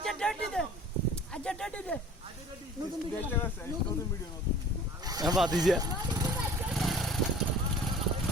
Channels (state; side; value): normal; both; correlation 0.46